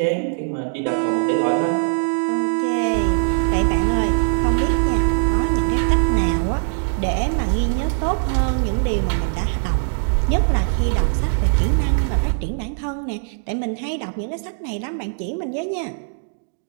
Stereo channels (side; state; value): left; silent; digital silence